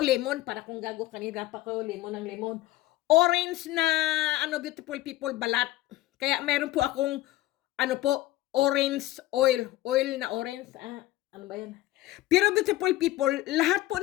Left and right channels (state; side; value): quieter; right; 16.5 dB